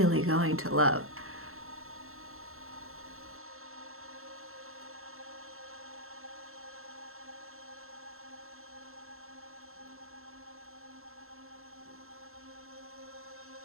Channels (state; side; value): late; left; 0.62 ms